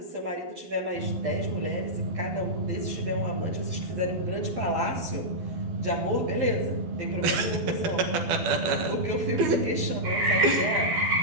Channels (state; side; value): late; left; 12 ms